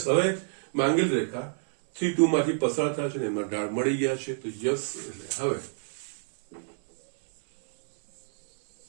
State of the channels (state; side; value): silent; left; 60 dB below the other